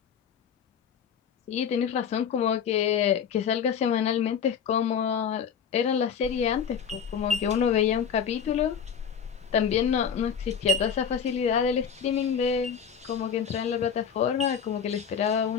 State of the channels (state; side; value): quieter; right; 7.3 dB